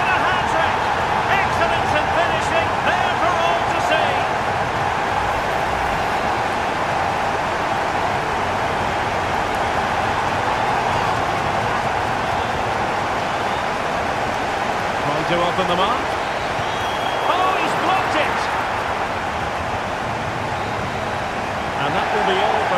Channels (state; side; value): identical; both; correlation 1.00